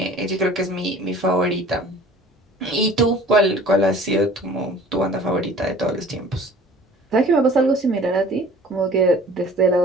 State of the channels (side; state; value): both; normal; correlation 0.48